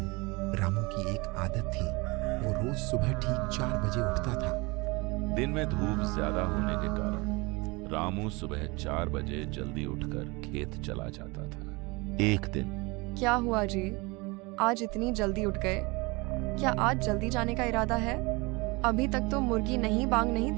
रामू की एक आदत थी, वो रोज सुबह ठीक 4 बजे उठता था। दिन में धूप ज्यादा होने के कारण रामू सुबह 4 बजे जल्दी उठकर खेत चला जाता था। एक दिन क्या हुआ जी, आज इतनी जल्दी उठ गए? क्या आज जल्दी जाने का इरादा है? अभी तक तो मुर्गी नहीं बांग नहीं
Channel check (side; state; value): left; quieter; 25.8 dB